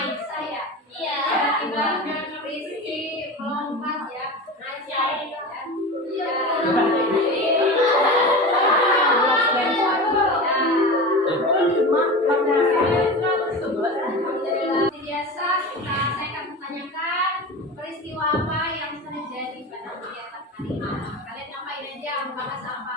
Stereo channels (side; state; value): both; normal; correlation 0.29